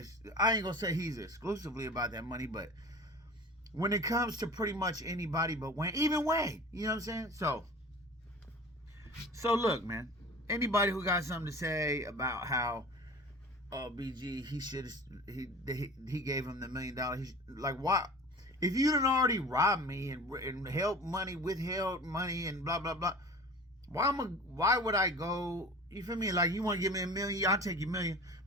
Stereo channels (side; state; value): both; normal; correlation 0.39